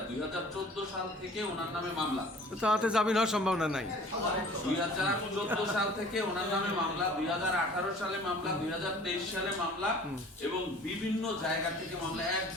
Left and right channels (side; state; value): both; normal; correlation 0.48